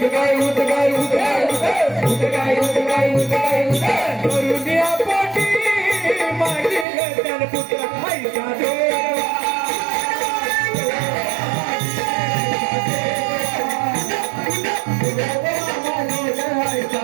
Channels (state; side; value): drops out; left; at 6.9 s